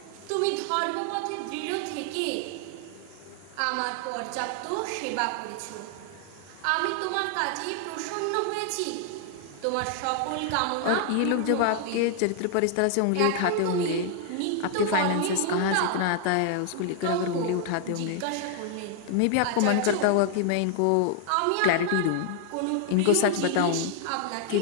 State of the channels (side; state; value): both; different; correlation 0.00